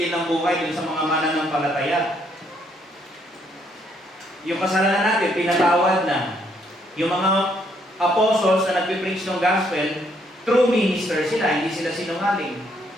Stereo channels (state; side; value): normal; both; correlation 0.71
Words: ng buhay dun sa mga mananampalataya. Yung kasalanan natin, pinatawad na. Yung mga apostles na nagpipreach ng gospel, true minister sila, hindi sila sinungaling.